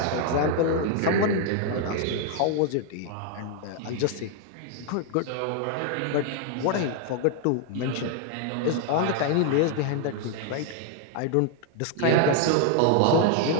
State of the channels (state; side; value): different; both; correlation 0.00